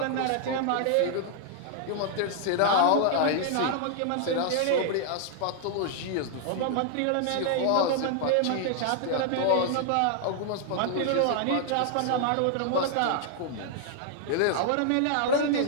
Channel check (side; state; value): both; different; correlation -0.01